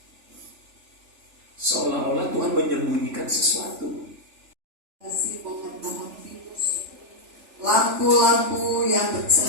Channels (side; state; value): left; late; 3.4 ms